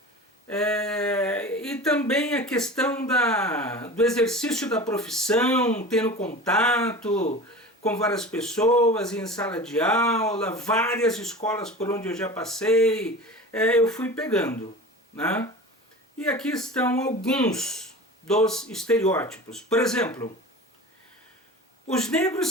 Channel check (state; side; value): normal; both; correlation 0.35